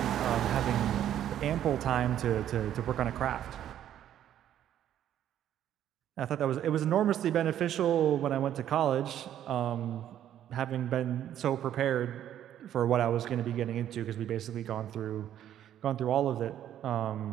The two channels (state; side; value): quieter; left; 11.0 dB